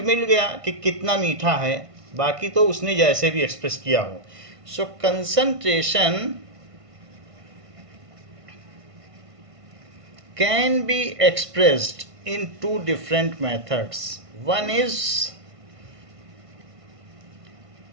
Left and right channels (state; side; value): late; left; 1.5 ms